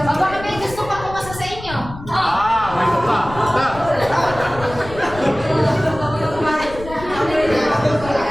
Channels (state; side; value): noise; left; rumble, 14 dB below the sound